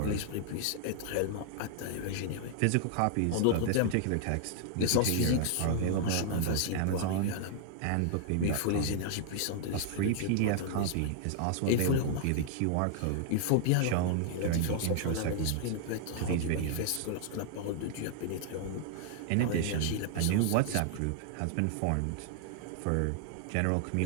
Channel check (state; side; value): different; both; correlation -0.01